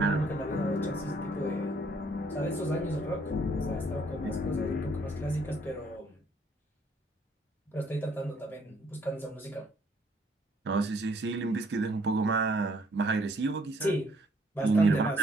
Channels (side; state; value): both; normal; correlation 0.65